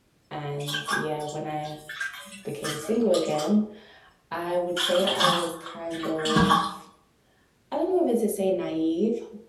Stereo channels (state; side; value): identical; both; correlation 1.00